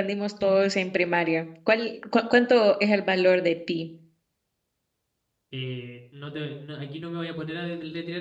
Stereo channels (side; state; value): both; identical; correlation 1.00